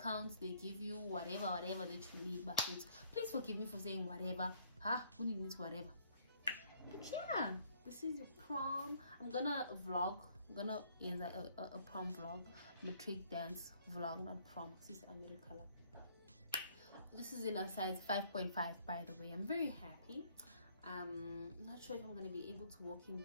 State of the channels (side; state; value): both; inverted; correlation -0.64